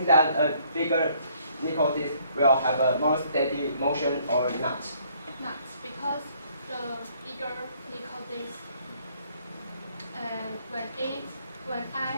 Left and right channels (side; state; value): both; inverted; correlation -0.64